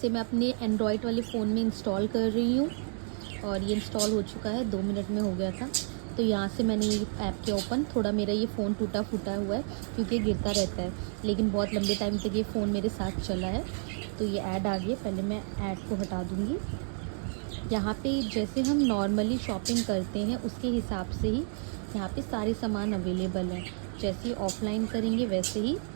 मैं अपने एंड्रॉयड वाले फ़ोन में इंस्टॉल कर रही हूँ और ये इंस्टॉल हो चुका है, 2 मिनट में हो गया था। तो यहाँ से मैंने ये ऐप के ओपन, थोड़ा मेरा ये फ़ोन टूटा फूटा हुआ है क्योंकि गिरता रहता है, लेकिन बहुत लंबे टाइम तक ये फ़ोन मेरे साथ चला है। तो ये ऐड आ गई, पहले मैं ऐड को हटा दूँगी। यहाँ पे जैसे हम नॉर्मली शॉपिंग करते हैं उसके हिसाब से ही यहाँ पे सारे सामान अवेलेबल हैं। जैसे ऑफलाइन करेंगे वैसे ही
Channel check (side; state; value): left; silent; 58 dB below the other